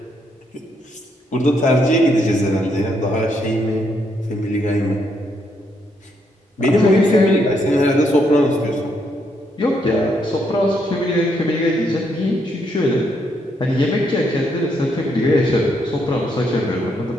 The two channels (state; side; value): normal; both; correlation 0.75